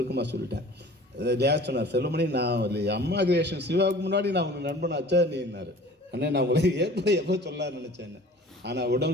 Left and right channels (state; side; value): normal; both; correlation 0.45